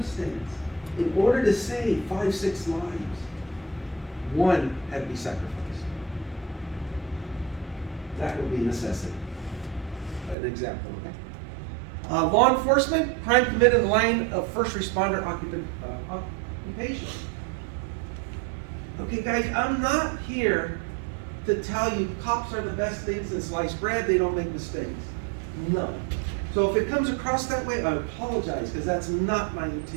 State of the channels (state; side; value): drops out; left; at 10.4 s